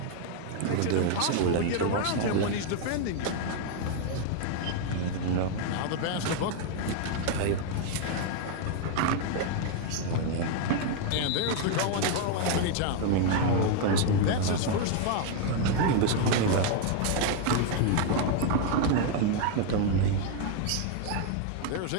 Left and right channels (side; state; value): both; different; correlation 0.00